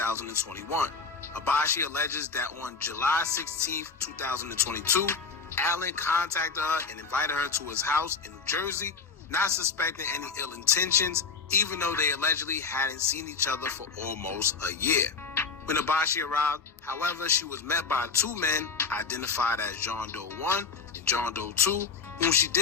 Abashi alleges that on July 16, 2022, Allen contacted her and invited her to his house in New Jersey, not suspecting any ill intentions, even though they allegedly hadn't seen each other for almost a year. When Abashi arrived, however, she was met by two men identified as John Doe 1 and John Doe 2, whom she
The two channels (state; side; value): quieter; right; 5.1 dB